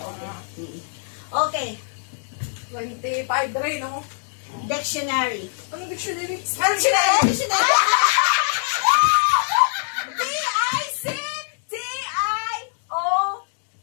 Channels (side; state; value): right; silent; digital silence